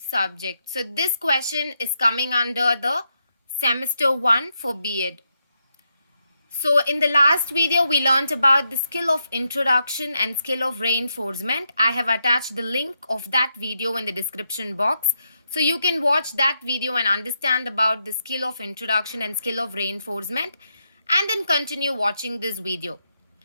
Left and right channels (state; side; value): inverted; both; correlation -0.82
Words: So this question is coming under the semester 1 for B.Ed. So in the last video, we learned about the skill of introduction and skill of reinforcement. I have attached the link of that video in the description box. So you can watch that video and understand about the skill of introduction and skill of reinforcement and then continue watching this video.